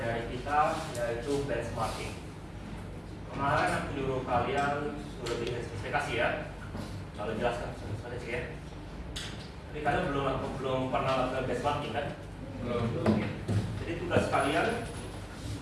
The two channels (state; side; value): identical; both; correlation 1.00